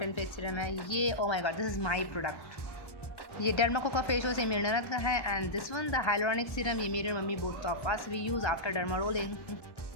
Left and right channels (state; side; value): late; right; 1.1 ms